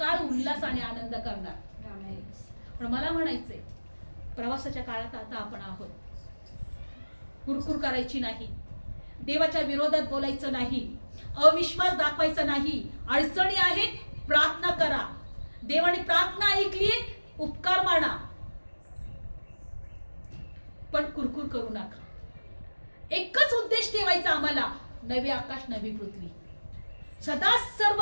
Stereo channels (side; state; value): both; inverted; correlation -1.00